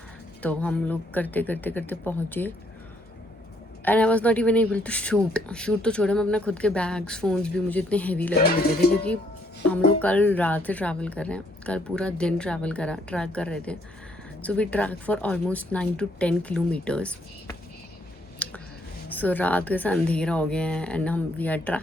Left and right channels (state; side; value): normal; both; correlation 0.69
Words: तो हम लोग करते पहुँचे and I was not even able to shoot तो छोड़े, मैं अपना खुद के बैग्स फ़ोन्स भी मुझे इतने हैवी लगने लगे थे क्योंकि हम लोग कल रात से ट्रैवल कर रहे हैं। कल पूरा दिन ट्रैक कर रहे थे। So we track for almost 9 to 10 kilometres. सो रात का अंधेरा हो गया है एंड वी आर